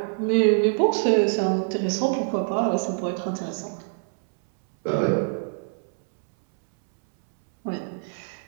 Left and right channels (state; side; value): silent; left; 62 dB below the other